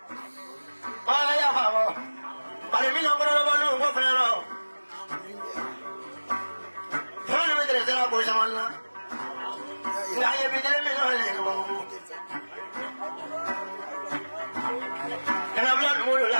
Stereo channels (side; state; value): both; inverted; correlation -1.00